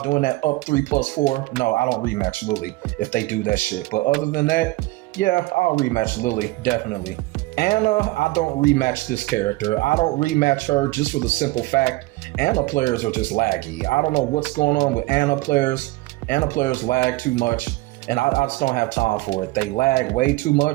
doing that up 3+4, no, I don't rematch Lily if they do that shit. But other than that, yeah, I'll rematch Lily, definitely. Anna, I don't rematch this character. I don't rematch her just for the simple fact Anna players are just laggy. I don't know what's going on with Anna players. Anna players lag too much, and I just don't have time for it. They lag way too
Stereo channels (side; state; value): left; quieter; 20.4 dB